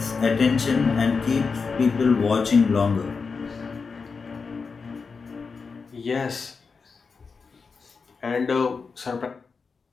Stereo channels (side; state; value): right; quieter; 5.0 dB